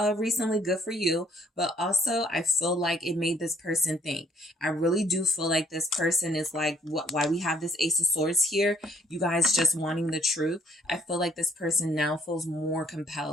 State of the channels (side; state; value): both; normal; correlation 0.64